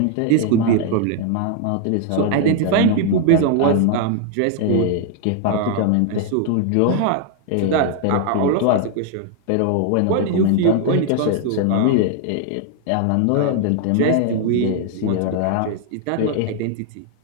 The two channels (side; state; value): both; different; correlation 0.00